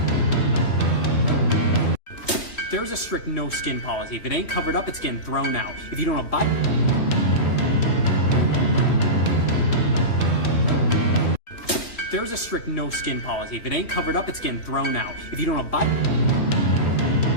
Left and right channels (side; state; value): right; late; 2.9 ms